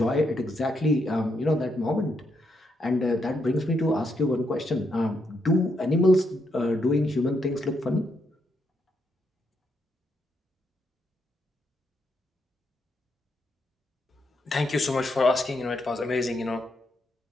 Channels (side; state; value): both; normal; correlation 0.79